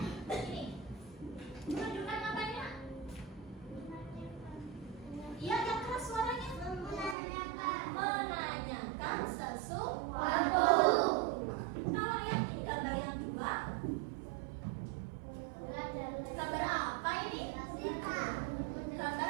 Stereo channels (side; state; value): left; drops out; at 7.2 s